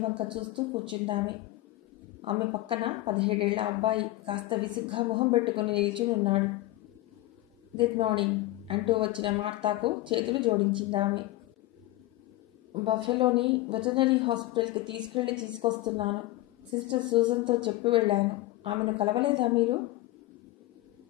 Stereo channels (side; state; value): right; quieter; 17.1 dB